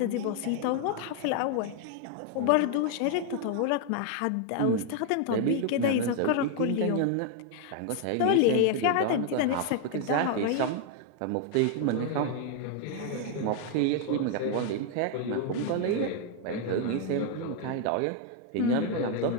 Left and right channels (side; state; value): both; different; correlation 0.00